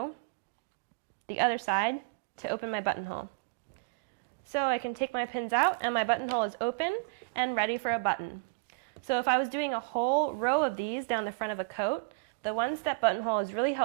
the other side to open my buttonhole. So I can take my pins out, and my buttonhole is open and ready for a button. So if I was doing a whole row of these down the front of a coat, the one-step buttonhole is really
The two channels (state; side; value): quieter; left; 33.1 dB